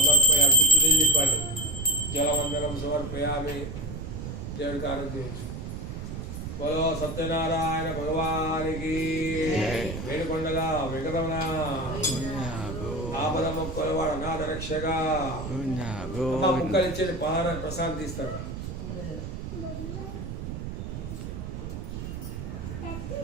चुटुनिल्लिपल्लि जलवंदनम समर्पयामि देवुడి ఆరాధన बोलो सत्यनारायण भगवान की वेणुకొండల వెంకటరమణ ఆపద మొక్కలవాడ అనాథ రక్షక ముక్కలిచ్చేది పహారం ప్రసాదం తీస్తారు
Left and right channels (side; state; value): right; noise; rumble, 7 dB below the sound